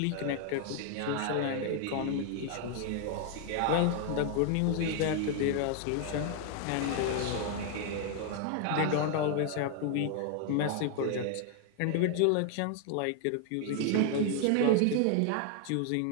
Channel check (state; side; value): different; both; correlation 0.00